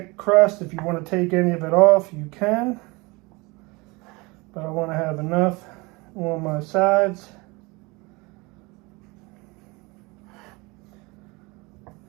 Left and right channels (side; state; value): left; quieter; 25.4 dB